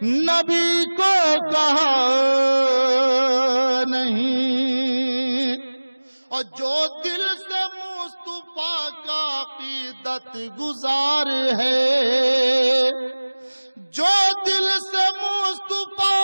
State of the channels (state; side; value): inverted; both; correlation -1.00